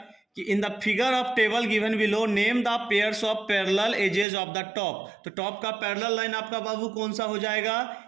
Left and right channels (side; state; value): left; drops out; at 4.2 s